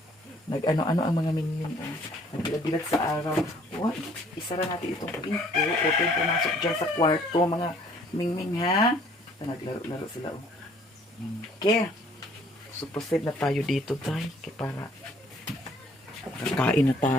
Nag-ano-ano ang mga Mingming, oh. Nagbilag-bilag sa araw. Oh, isara natin itong pinto. Huwag kayong pumasok dyan sa kwarto, mga Mingming, ha? Naglaro-laro sila, oh. Okay. So, proceed na tayo dito, tayo. Kaya para kakain na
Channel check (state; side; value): normal; both; correlation 0.59